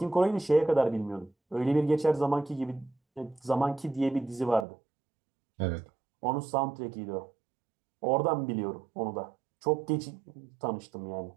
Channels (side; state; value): left; drops out; at 4.7 s